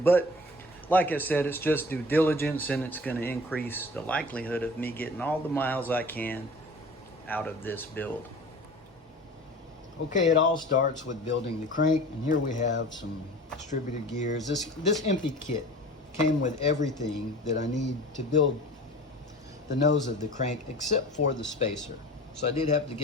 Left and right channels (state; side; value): normal; both; correlation 0.41